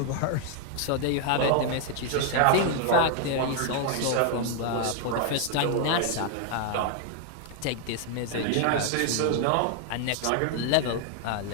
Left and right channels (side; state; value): both; different; correlation 0.00